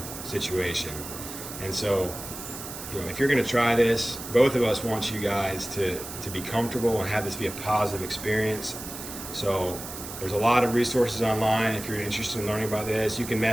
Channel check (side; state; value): right; noise; hiss, 10 dB below the sound